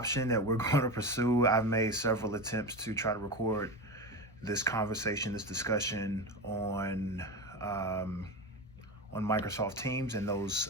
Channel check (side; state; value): both; normal; correlation 0.22